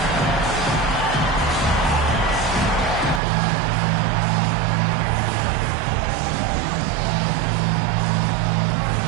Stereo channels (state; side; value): drops out; left; at 3.2 s